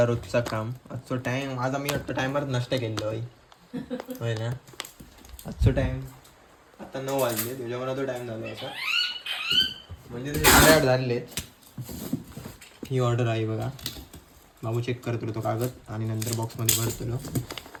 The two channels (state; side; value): identical; both; correlation 1.00